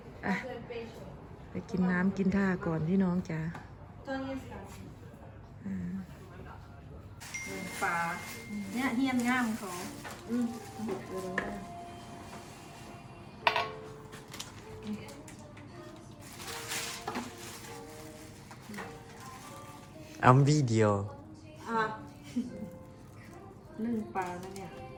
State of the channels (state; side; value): identical; both; correlation 1.00